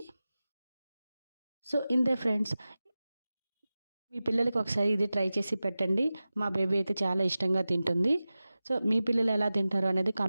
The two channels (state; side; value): inverted; both; correlation -0.96